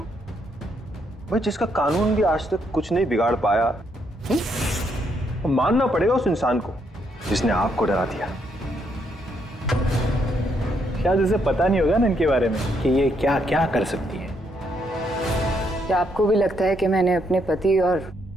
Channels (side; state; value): both; normal; correlation 0.75